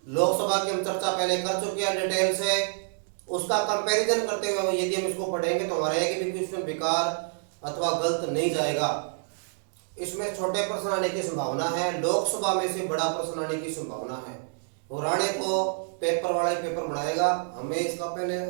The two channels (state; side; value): silent; left; digital silence